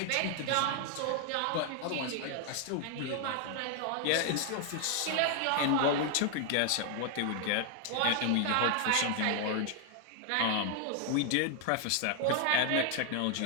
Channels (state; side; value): different; both; correlation 0.00